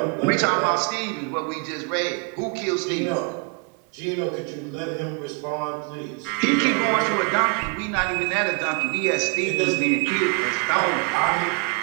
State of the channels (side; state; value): left; quieter; 34.3 dB